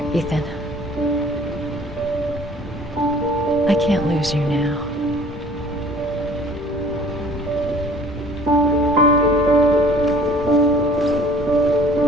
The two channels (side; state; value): both; normal; correlation 0.51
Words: Ethan. I can't lose you now.